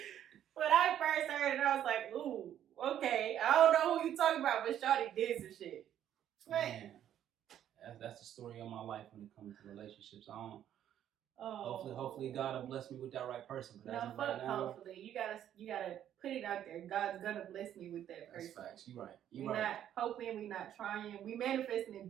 When I first heard it, I was like, ooh, Okay, I don't know who you talking about, but Shawty did some shit. Man, that's the story of my life when it comes to relationships. I don't. Hopefully God will bless me with that right person. But no, fuck. Hopefully, you gotta put it out there. God's gonna bless me with that person. That's facts. You right. We're not hoping. We not trying. We manifesting and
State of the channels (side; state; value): left; quieter; 10.7 dB